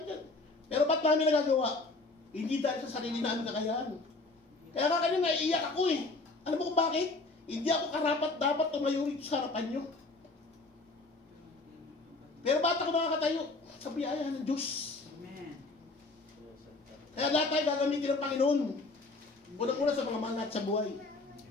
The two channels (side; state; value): right; quieter; 3.3 dB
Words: yan. Pero ba't namin nagagawa? Hindi dahil sa sarili namin kakayahan. Kaya nga kanina, naiiyak ako eh. Alam mo kung bakit? Hindi ako karapat dapat tumayo rito sa harapan nyo. Pero ba't ako nakakatayo? Sa biyaya ng Diyos. Amen. Kaya lahat tayo gagamitin ng Panginoon. Unang-una sa mga manat sa buhay.